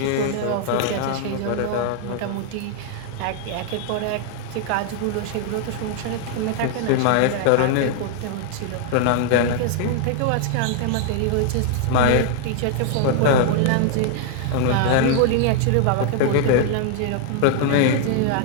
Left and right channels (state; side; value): different; both; correlation 0.00